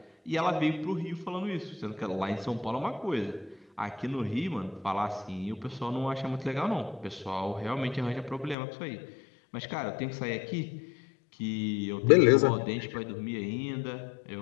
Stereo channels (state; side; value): drops out; right; at 8.6 s